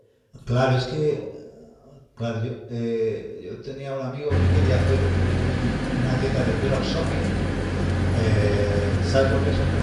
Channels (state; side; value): identical; both; correlation 1.00